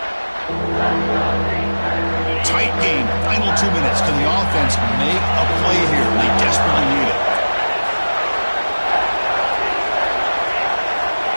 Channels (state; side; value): inverted; both; correlation -1.00